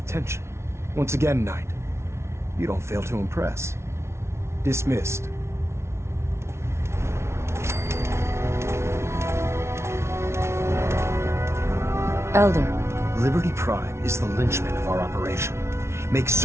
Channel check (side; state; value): left; late; 0.13 ms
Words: Once again, Knight, you don't fail to impress. Dismissed. Elder. Liberty Prime is the linchpin of our operation. Make